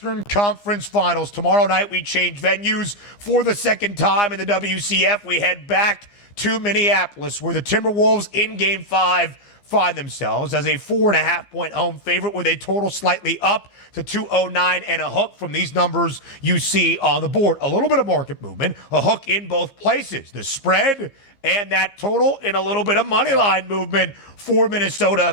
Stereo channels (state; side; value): late; right; 15 ms